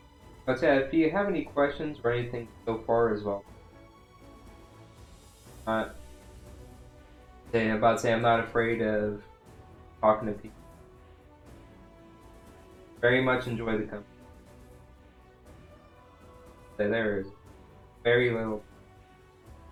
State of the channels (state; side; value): identical; both; correlation 1.00